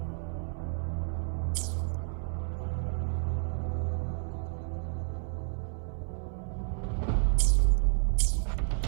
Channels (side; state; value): left; silent; 57 dB below the other